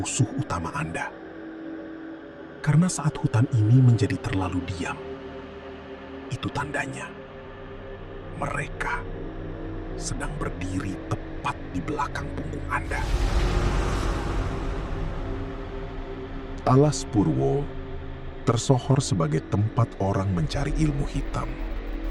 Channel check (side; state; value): both; identical; correlation 1.00